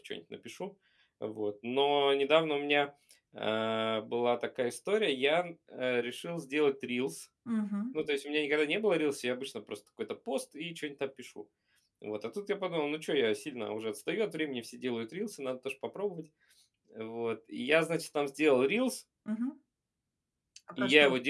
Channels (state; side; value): identical; both; correlation 1.00